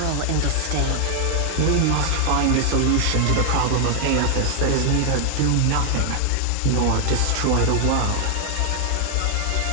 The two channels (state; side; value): different; both; correlation 0.00